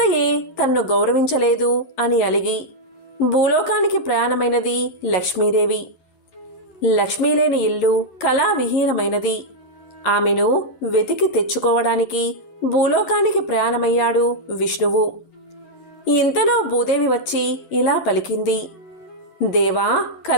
తన్ను గౌరవించలేదు అని అలిగి భూలోకానికి ప్రయాణమైనది లక్ష్మీదేవి. లక్ష్మీ లేని ఇల్లు కళావిహీనమైనది. ఆమెను వెతికి తెచ్చుకోవడానికి భూలోకానికి ప్రయాణమయ్యాడు విష్ణువు. ఇంతలో భూదేవి వచ్చి ఇలా పలికింది: దేవా,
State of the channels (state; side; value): late; right; 11 ms